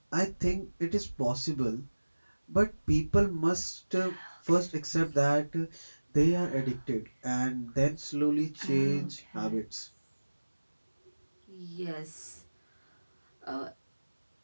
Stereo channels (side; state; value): both; inverted; correlation -1.00